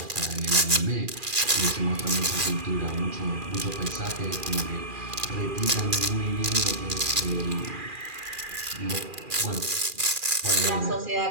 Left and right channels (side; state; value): left; late; 2.4 ms